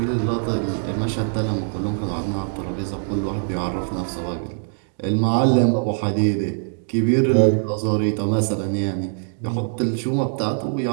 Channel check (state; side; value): silent; left; digital silence